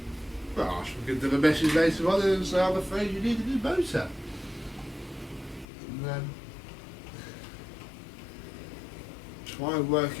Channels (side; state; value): right; drops out; at 5.7 s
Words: Well, I shall give them a message later on and say, I'm afraid you need a new motor. And then try and